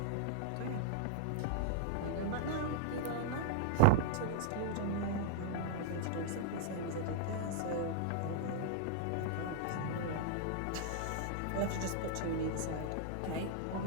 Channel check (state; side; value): different; both; correlation -0.01